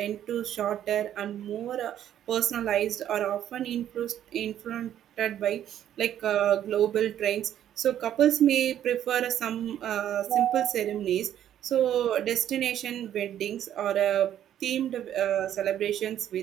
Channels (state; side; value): quieter; left; 10.9 dB